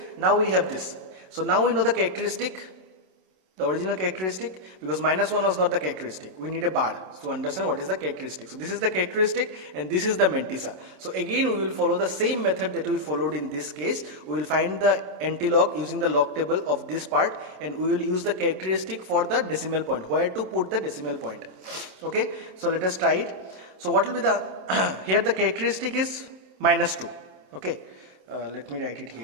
Now we have this. So now we know the characteristic, the original characteristic, because minus 1 was not the characteristic. We need a bar to understand what is the characteristic. So this is the characteristic and this is the mantissa. So again we will follow the same method that we followed in this case. We will find the antilog using the log table of this part, and we will use the characteristic for the decimal point, where to put the decimal point. Okay, so let us try it. So what will be the here the characteristic is minus 2. Okay, let me write it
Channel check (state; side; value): late; left; 27 ms